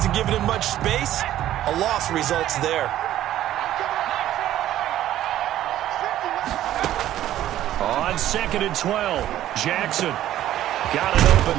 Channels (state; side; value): quieter; left; 13.0 dB